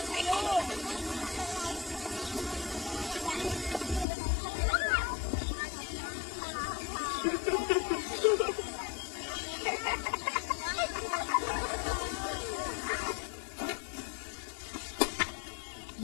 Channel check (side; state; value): right; drops out; at 4.0 s